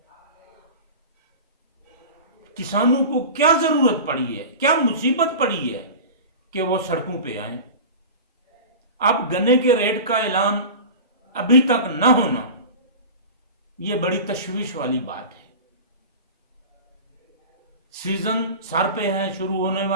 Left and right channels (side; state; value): both; inverted; correlation -0.32